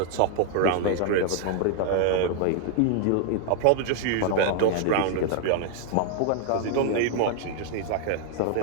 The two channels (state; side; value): different; both; correlation 0.00